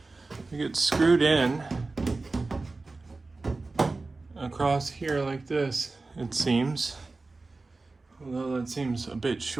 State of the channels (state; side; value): quieter; left; 3.6 dB